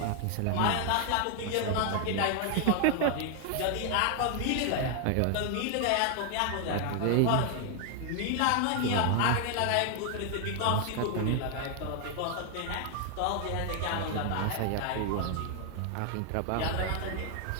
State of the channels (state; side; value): different; both; correlation 0.00